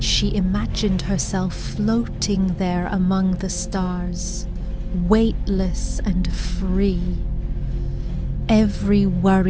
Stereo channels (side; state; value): both; identical; correlation 1.00